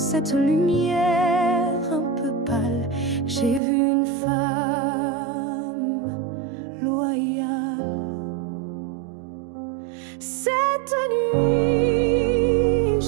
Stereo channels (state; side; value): drops out; left; at 3.6 s